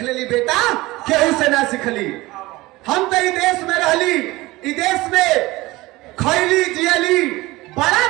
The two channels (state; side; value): quieter; left; 20.0 dB